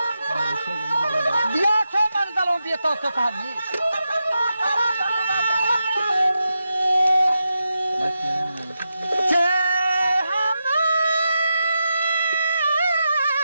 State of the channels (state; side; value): inverted; both; correlation -0.88